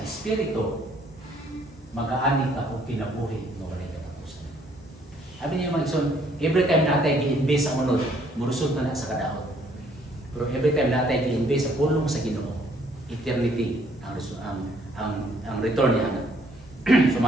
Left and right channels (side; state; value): both; normal; correlation 0.64